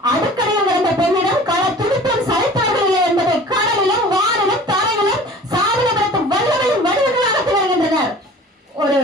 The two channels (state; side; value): normal; both; correlation 0.44